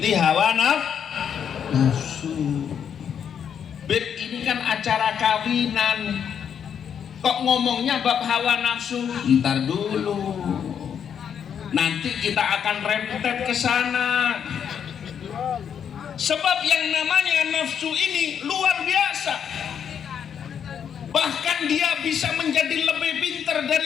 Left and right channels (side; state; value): right; quieter; 8.0 dB